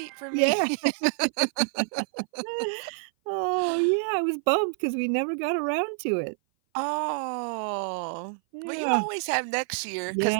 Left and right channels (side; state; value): left; silent; 57 dB below the other